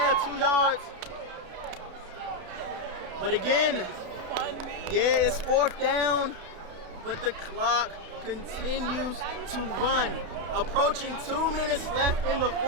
2 yards. But again, yeah, it's 4th down, but the clock continues to run. Approaching 2 minutes left in the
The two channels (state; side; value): late; left; 32 ms